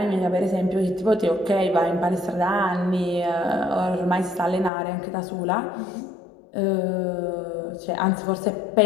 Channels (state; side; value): drops out; right; at 4.7 s